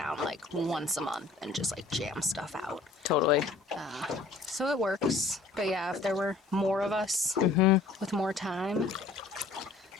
like once a month and just like jam stuff out. Totally. So it works. But yeah, if there were more of us with more time,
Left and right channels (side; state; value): right; quieter; 3.7 dB